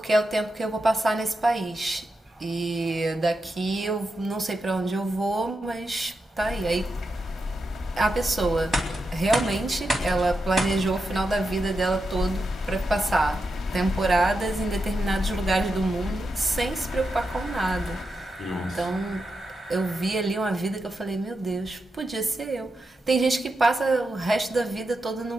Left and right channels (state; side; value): normal; both; correlation 0.87